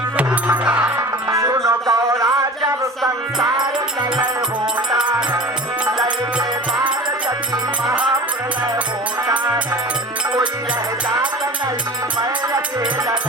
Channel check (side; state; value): both; normal; correlation 0.36